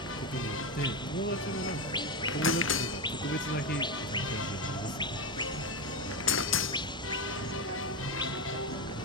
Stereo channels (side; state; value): both; normal; correlation 0.13